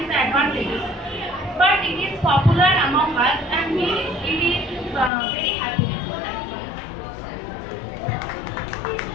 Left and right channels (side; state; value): right; drops out; at 5.1 s